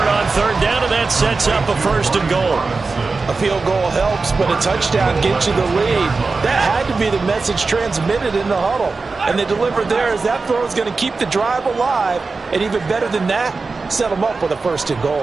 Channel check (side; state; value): left; quieter; 4.1 dB